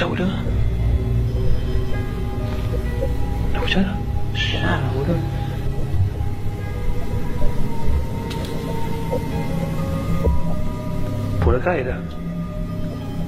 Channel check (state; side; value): identical; both; correlation 1.00